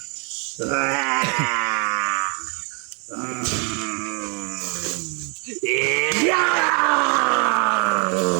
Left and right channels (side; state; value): left; quieter; 35.5 dB